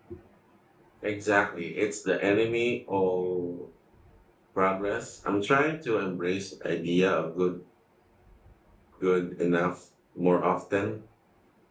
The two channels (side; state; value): both; identical; correlation 1.00